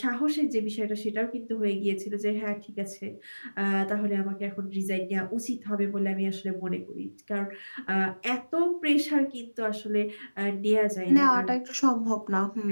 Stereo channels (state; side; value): inverted; both; correlation -1.00